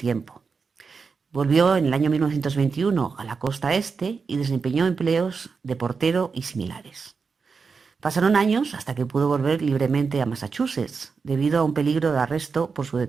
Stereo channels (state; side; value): quieter; left; 5.1 dB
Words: Volvió en el año 1921 a la costa este y desempeñó empleos de portero y similares. Pasaron años hasta que pudo volver libremente a Massachusetts, debido a un peligro de arresto por su